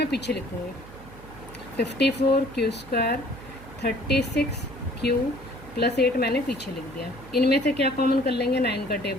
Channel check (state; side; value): noise; right; hum, 18 dB below the sound